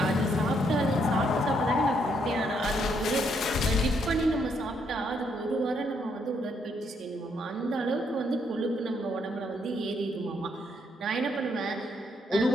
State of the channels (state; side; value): normal; both; correlation 0.74